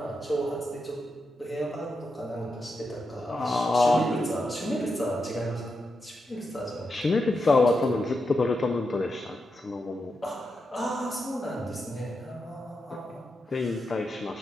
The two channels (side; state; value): both; normal; correlation 0.86